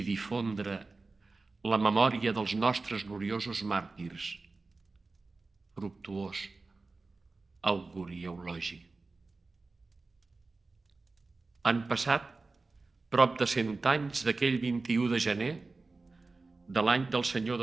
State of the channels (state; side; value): quieter; left; 3.7 dB